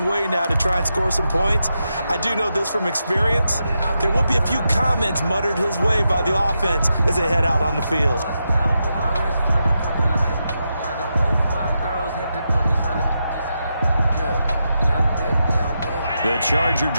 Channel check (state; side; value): inverted; both; correlation -0.86